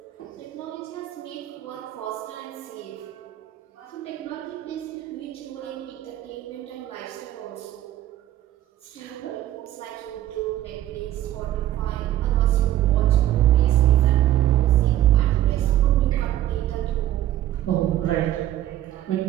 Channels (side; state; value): left; quieter; 13.2 dB